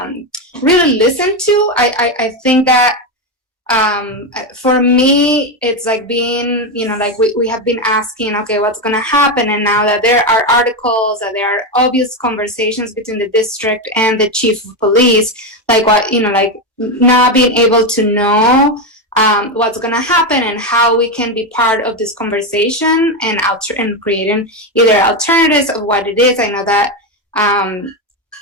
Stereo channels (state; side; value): normal; both; correlation 0.10